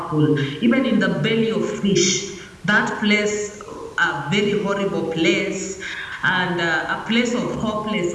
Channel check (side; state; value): both; identical; correlation 1.00